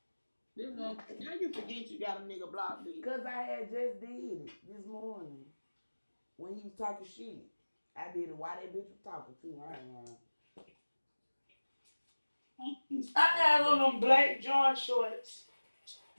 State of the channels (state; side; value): inverted; both; correlation -1.00